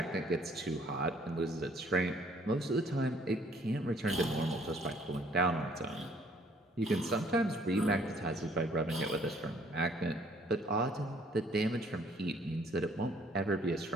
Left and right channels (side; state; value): both; normal; correlation 0.61